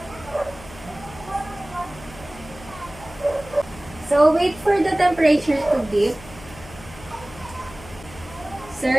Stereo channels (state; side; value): noise; left; hum, 18 dB below the sound